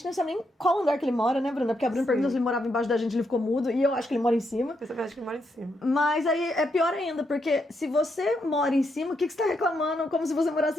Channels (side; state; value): both; normal; correlation 0.80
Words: não sabe nem qual andar que ele mora, né, Bruna? Porque a Bruna perguntou se ele morava embaixo da gente, ele ficou mudo. E eu acho que ele mora em cima. Eu também acho que ele mora em cima. Mas aí é pior ainda, porque se você mora em cima, o que você tá reclamando como se você